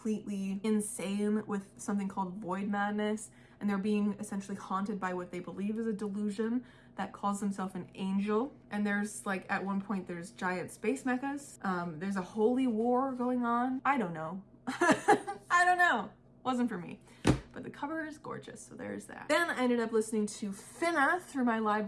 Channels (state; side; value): identical; both; correlation 1.00